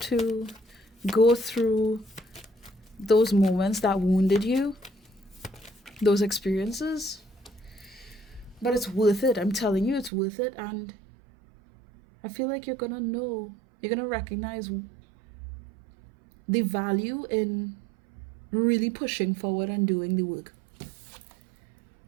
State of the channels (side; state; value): left; drops out; at 10.1 s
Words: to go through those moments that wounded you, those experiences. But it's worth it. I'm telling you, it's worth it. And I feel like you're gonna recognize the value in really pushing forward and doing the work.